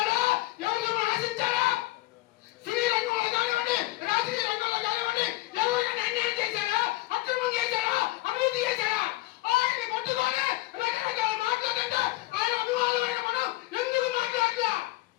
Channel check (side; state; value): right; quieter; 18.6 dB